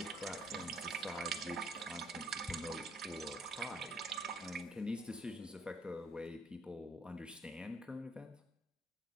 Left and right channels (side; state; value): both; normal; correlation 0.65